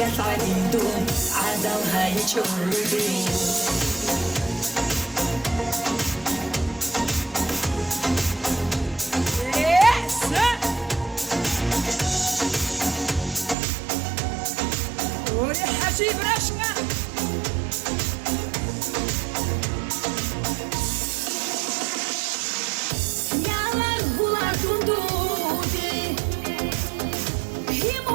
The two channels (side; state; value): left; drops out; at 13.6 s